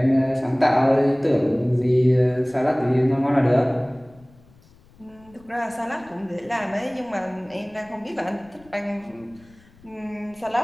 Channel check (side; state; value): left; noise; rumble, 27 dB below the sound